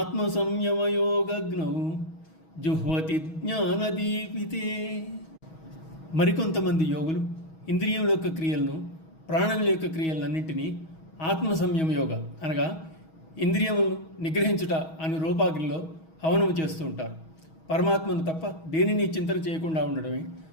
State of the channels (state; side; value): late; right; 6.3 ms